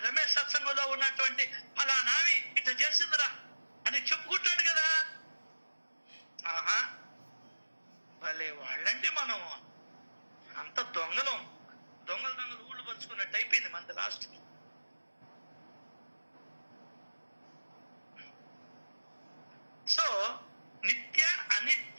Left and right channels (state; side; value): inverted; both; correlation -1.00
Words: రమేష్ సత్సంగంలో ఉన్నటువంటి ఫలానామి ఇట్లా చేసిందిరా అని చెప్పుకుంటాడు కదా. ఆహా, భలే వాళ్ళంటే మనం అంత దొంగలు ఊళ్ళు పంచుకున్నట్టు అయిపోయింది మనది లాస్ట్. సో నిత్య